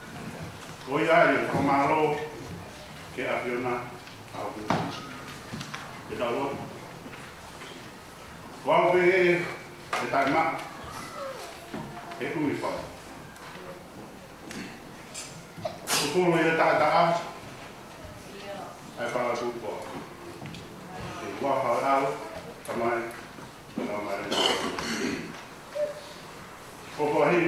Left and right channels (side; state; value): both; identical; correlation 1.00